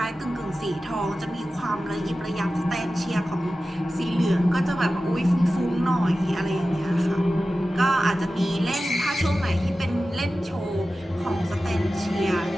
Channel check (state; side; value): normal; both; correlation 0.94